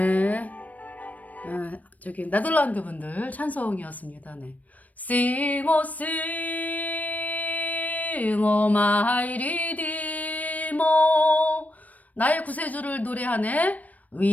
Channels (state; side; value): late; right; 0.074 ms